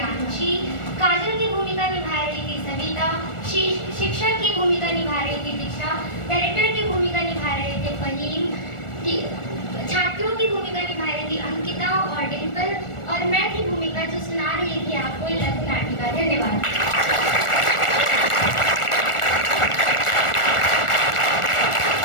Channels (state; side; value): late; right; 1.4 ms